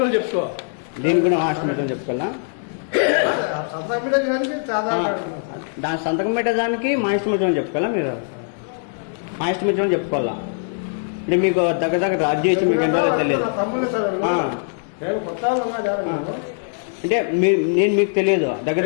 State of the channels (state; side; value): silent; right; 65 dB below the other